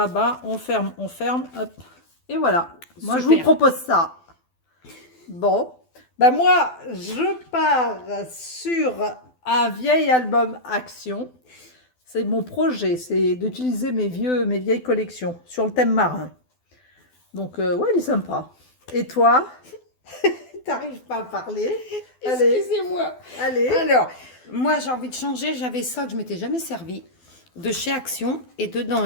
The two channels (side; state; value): right; late; 12 ms